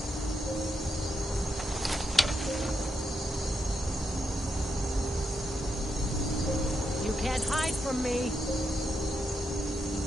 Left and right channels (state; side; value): normal; both; correlation 0.83